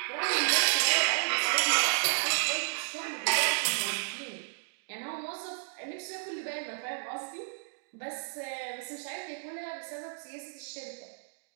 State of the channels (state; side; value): silent; left; digital silence